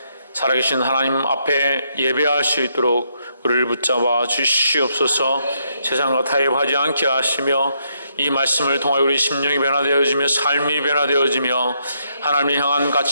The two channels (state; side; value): inverted; both; correlation -0.76